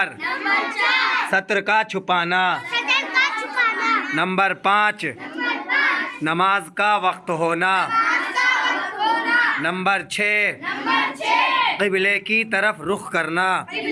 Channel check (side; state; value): both; identical; correlation 1.00